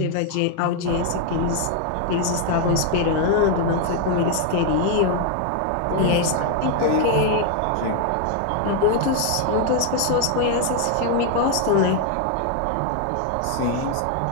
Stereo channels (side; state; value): both; different; correlation 0.00